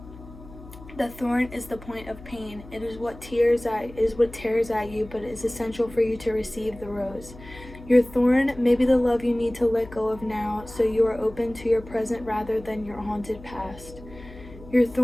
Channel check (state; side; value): noise; left; hum, 18 dB below the sound